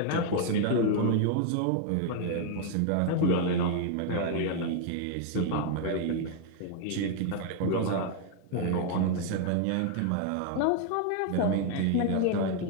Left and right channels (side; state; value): both; different; correlation 0.00